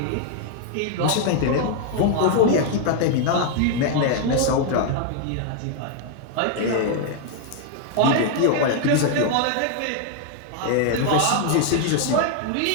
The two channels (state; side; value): different; both; correlation 0.00